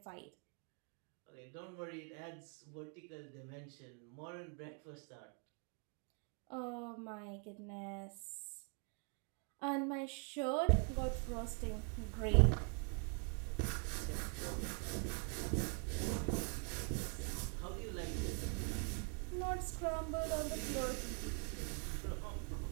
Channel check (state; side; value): quieter; left; 38.1 dB